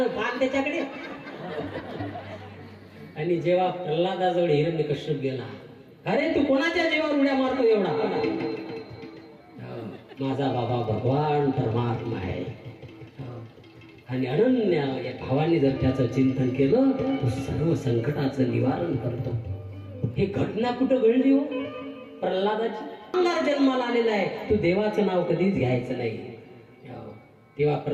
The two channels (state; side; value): identical; both; correlation 1.00